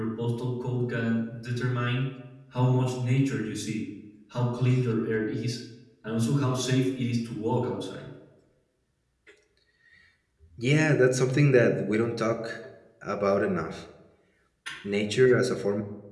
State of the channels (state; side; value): identical; both; correlation 1.00